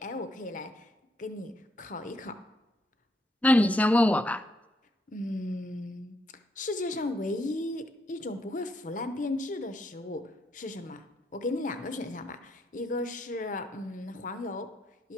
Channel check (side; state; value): both; normal; correlation 0.75